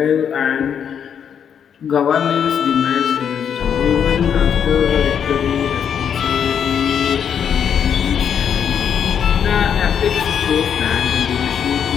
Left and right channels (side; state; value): right; quieter; 8.0 dB